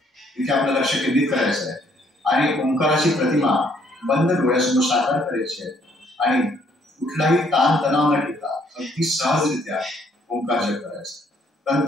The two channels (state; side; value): normal; both; correlation 0.66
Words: तिथे आपलं लक्ष केंद्रित करायचं आहे आणि ओंकाराची प्रतिमा बंद डोळ्यासमोर साकार करायची आहे आणि कुठलाही ताण तणाव न ठेवता अगदी सहजरित्या ओंकार जप करायचा.